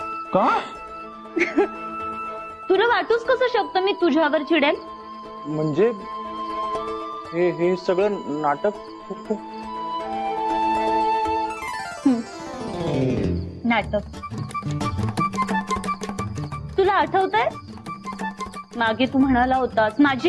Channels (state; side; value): identical; both; correlation 1.00